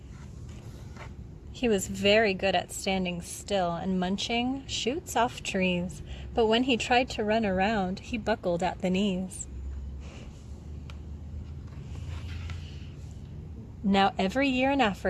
He was very good at standing still and munching shoots off trees, but when he tried to run around, he buckled at the knees. Now every year in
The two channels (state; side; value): identical; both; correlation 1.00